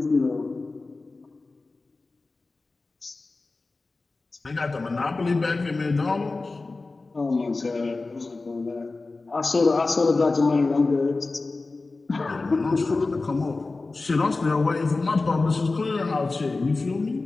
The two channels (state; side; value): quieter; right; 3.6 dB